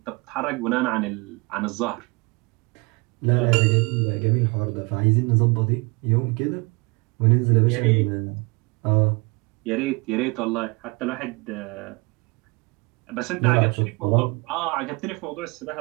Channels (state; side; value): quieter; left; 27.8 dB